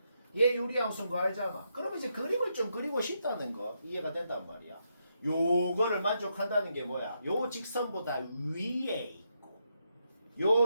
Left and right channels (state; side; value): inverted; both; correlation -0.81